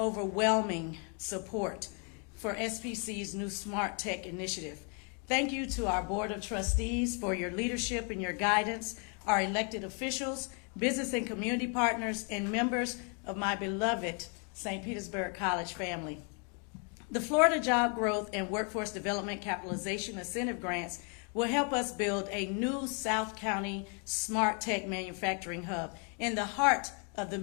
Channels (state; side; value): quieter; right; 37.8 dB